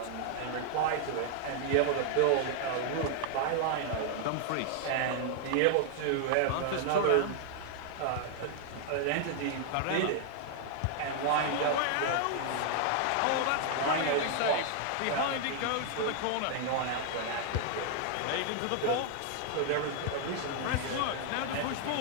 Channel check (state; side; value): different; both; correlation 0.00